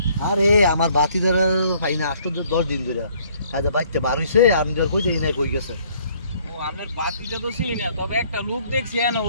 আরে আমার বাতি ধরে ভাই না আসতো 10 দিন ধরে আজ বাইতে বার হইছে আমি ধর কই দেই না কই গেছে। ও আমার বাতিটা তো চিনি না, তবে একটা লোক দেখছি না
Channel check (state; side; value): inverted; both; correlation -0.61